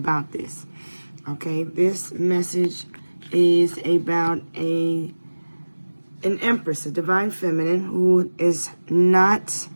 this. Okay, this message is about an empress, a divine feminine, who is not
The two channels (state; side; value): inverted; both; correlation -1.00